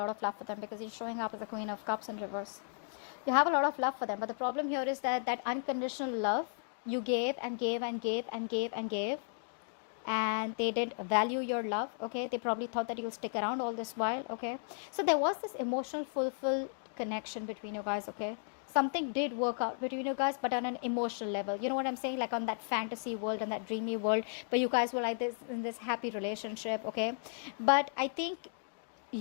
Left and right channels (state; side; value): silent; right; digital silence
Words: of love for them because you're showing up as the Queen of Cups in reverse. You have a lot of love for them, but the problem here is that that unconditional love you gave and gave and gave and gave and gave, and they didn't value your love, okay? They probably thought that you'll stick around all this while, okay? So there was this emotional fulfilled connection between you guys, okay? Something did work out between you guys, but on an emotional level. You know what I'm saying? Like on that fantasy world and that dreamy world where you guys were like this in this happy relationship, okay? But I think